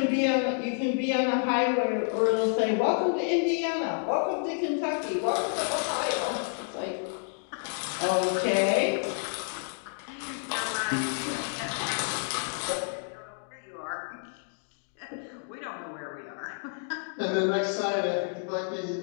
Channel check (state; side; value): silent; right; 58 dB below the other